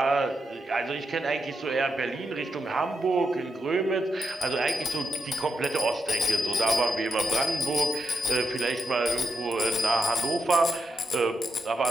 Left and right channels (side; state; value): both; normal; correlation 0.83